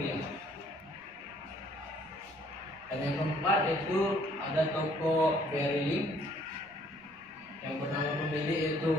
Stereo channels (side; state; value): right; noise; rumble, 29 dB below the sound